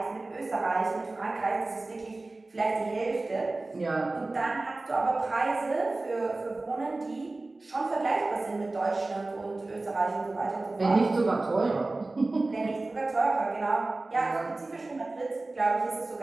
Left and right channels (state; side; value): quieter; left; 3.1 dB